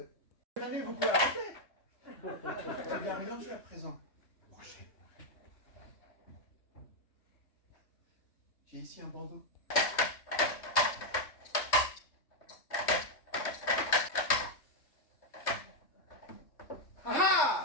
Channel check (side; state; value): right; late; 3.2 ms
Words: Manu, vous pouvez arrêter. Vous allez bien mélanger à présent. J'ai ici un bandeau.